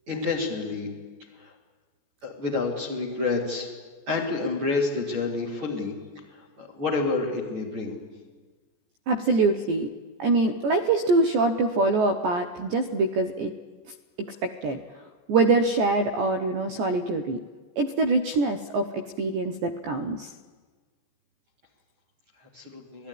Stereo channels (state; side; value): late; left; 14 ms